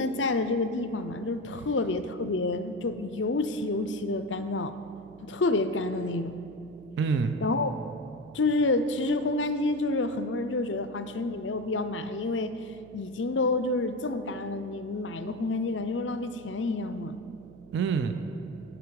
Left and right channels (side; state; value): right; noise; hum, 21 dB below the sound